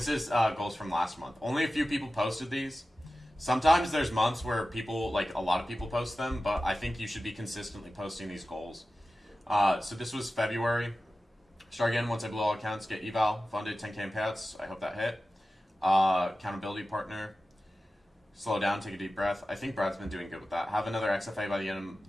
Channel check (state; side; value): normal; both; correlation 0.95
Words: is goals from last month. Only a few people posted these. Sometimes there's months where a lot of people post them, but I think you should be consistently posting these goals. So this was February. Start again once I blow all accounts, get eval, funded, 10K in payouts. I hope that hit. Accountability partner. Slow down, take a deep breath. I think Brad's been doing good with that. Have another XFA by the end